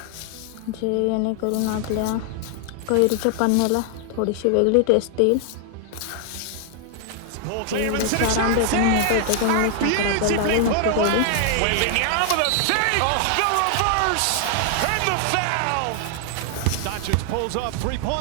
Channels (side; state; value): both; different; correlation 0.00